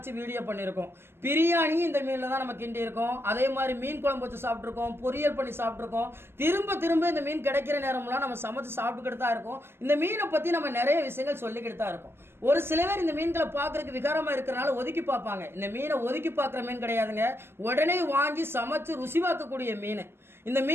வீடியோ பண்ணியிருக்கோம். பிரியாணி இந்த மீனில் தான் நம்ம கிண்டி இருக்கோம். அதே மாதிரி மீன் குழம்பு வச்சு சாப்பிட்ருக்கோம், பொரியல் பண்ணி சாப்பிட்ருக்கோம். திரும்ப திரும்ப இந்த மீன் கிடைக்கிற நேரம்லாம் நம்ம சமைச்சு சாப்பிட்டுக்கிட்டு தான் இருக்கோம். இந்த மீனை பற்றி நம்ம நிறைய விஷயங்கள் சொல்லிக்கிட்டு தான் இருக்கோம். ஒரு சில பேர் இந்த மீன்களை பார்க்கறதுக்கு விகாரமா இருக்கிறனால ஒதுக்கி பார்ப்பாங்க. இந்த மீனை ஒதுக்கி பார்க்குற மீன் கிடையாதுங்க. உடனே வாங்கி சமைச்சு ருசி பார்க்கக்கூடிய மீன். இந்த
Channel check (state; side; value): late; left; 0.12 ms